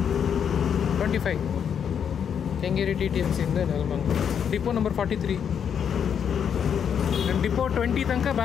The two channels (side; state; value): right; quieter; 7.9 dB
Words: 25 Kengeri TTMC ಇಂದ ನೆಲಮಂಗಲ. Depot number 43. ನಾನು ಡಿಪೋ 20 ತನಕ